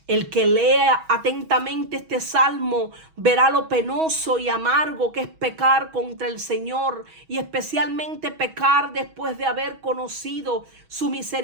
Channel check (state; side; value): late; left; 6.2 ms